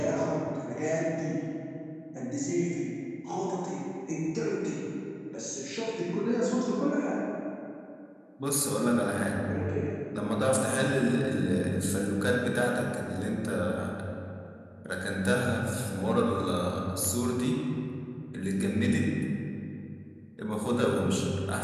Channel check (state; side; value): identical; both; correlation 1.00